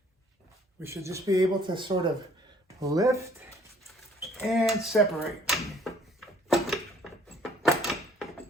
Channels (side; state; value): both; normal; correlation 0.59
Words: we should just be able to sort of lift and separate.